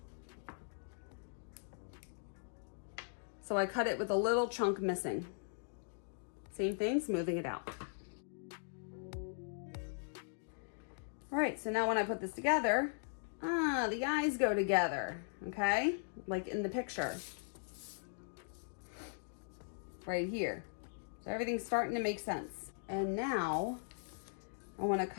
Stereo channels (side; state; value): right; silent; digital silence